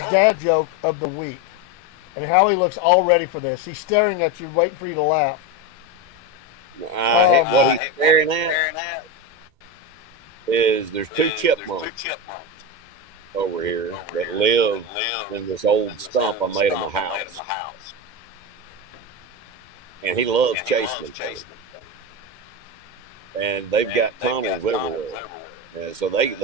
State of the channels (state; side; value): late; left; 2.1 ms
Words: dad joke of the week, and how he looks all ready for this. He's staring at you, waiting for you to laugh. What he's staring at is there's 2 chipmunks over here that live in this old stump I made him a house. And he loves chasing them. And they've got tunnels everywhere. And so